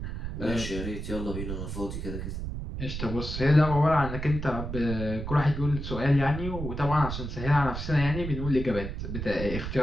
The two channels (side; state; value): right; noise; rumble, 6 dB below the sound